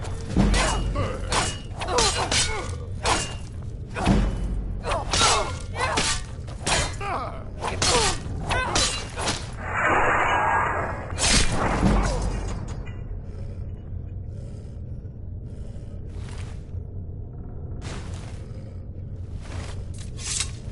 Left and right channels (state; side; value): identical; both; correlation 1.00